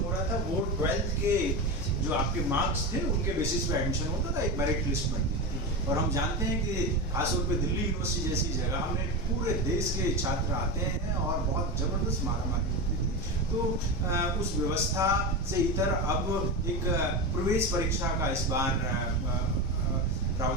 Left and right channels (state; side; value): normal; both; correlation 0.19